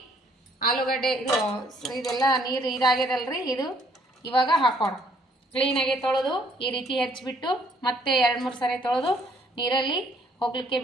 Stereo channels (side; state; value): both; normal; correlation 0.64